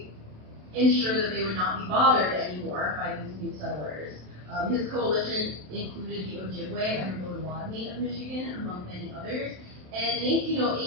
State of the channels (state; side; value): late; left; 27 ms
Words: ensure that they would not be bothered anymore by these new settlers. His coalition included the Ojibwe and the Potawatomi of Michigan, among many others. And in